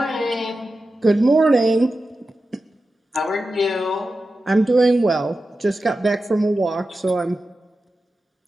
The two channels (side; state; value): both; normal; correlation 0.92